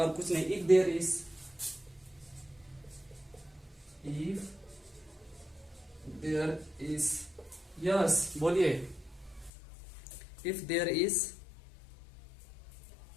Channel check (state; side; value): drops out; right; at 9.5 s